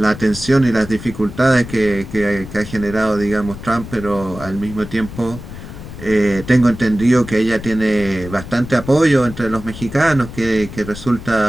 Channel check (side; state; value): left; noise; rumble, 12 dB below the sound